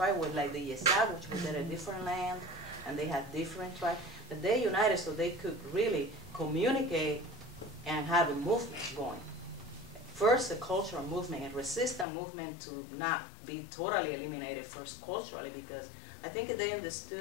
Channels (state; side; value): drops out; right; at 12.1 s